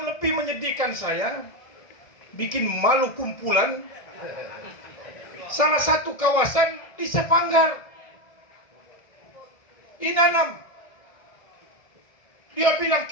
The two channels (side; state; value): right; late; 1.6 ms